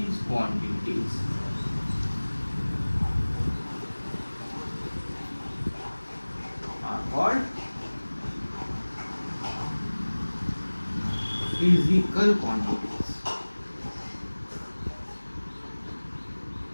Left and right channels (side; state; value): both; inverted; correlation -1.00